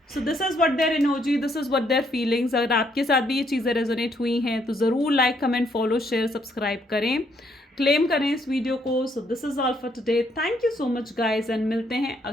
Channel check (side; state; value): both; normal; correlation 0.71